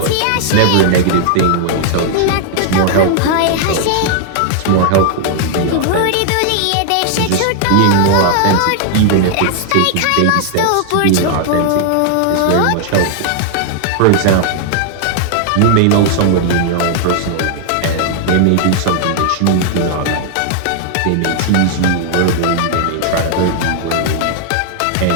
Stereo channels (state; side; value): different; both; correlation -0.01